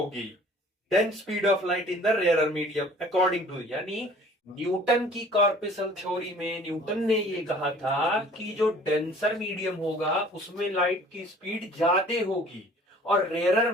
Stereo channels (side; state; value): both; normal; correlation 0.50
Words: than speed of light in the rarer medium according to, यानी न्यूटन की कॉर्पस्कल थ्योरी में न्यूटन ने ये कहा था कि जो डेंसर मीडियम होगा उसमें लाइट की स्पीड ज्यादा होगी और रेयरर